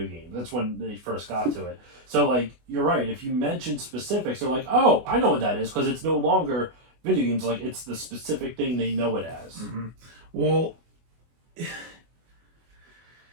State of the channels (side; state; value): left; late; 24 ms